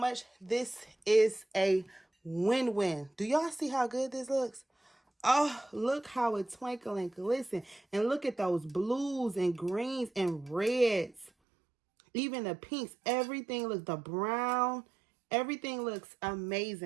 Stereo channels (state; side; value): drops out; left; at 11.3 s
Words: This is a win-win. Do y'all see how good this looks? Oh, look how it twinkle and glisten. And look at those blues and greens and reds. Even the pinks, everything looks, the brown, everything looks